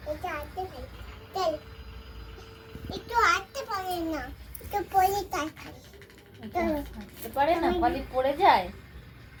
একটু হাঁটতে পারে না, একটু পরে তাই খাই। হাঁটতে পারে না, খালি পড়ে যায়।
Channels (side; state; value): both; identical; correlation 1.00